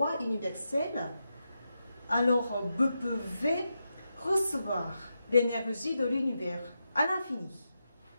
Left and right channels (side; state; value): both; inverted; correlation -0.87